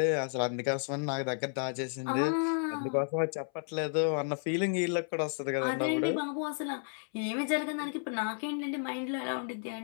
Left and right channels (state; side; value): silent; right; 56 dB below the other